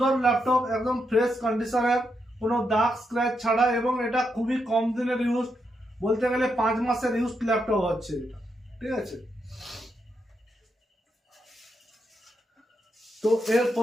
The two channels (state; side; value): normal; both; correlation 0.82